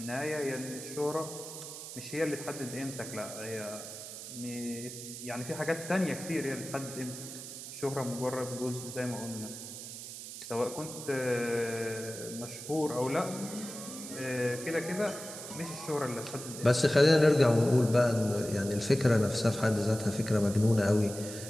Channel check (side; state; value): right; noise; hiss, 10 dB below the sound